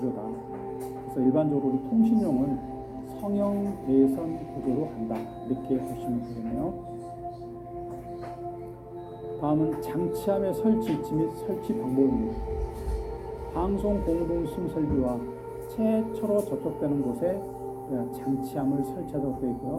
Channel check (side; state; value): both; identical; correlation 1.00